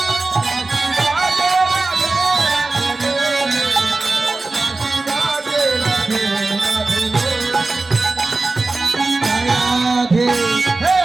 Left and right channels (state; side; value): quieter; left; 3.4 dB